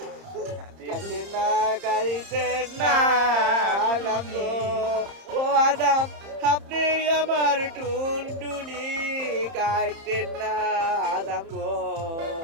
খাইতেন না খাইতেন না আদম গো ও আদম আপনি আমার টুনটুনি খাইতেন না আদম গো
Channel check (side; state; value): left; late; 30 ms